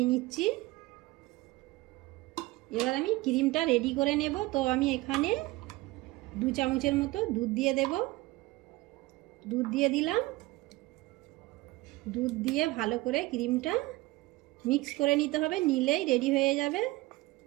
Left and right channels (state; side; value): quieter; left; 20.2 dB